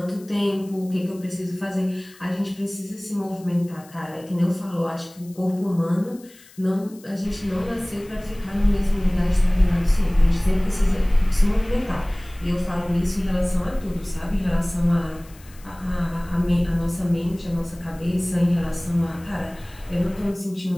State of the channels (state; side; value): noise; left; hiss, 24 dB below the sound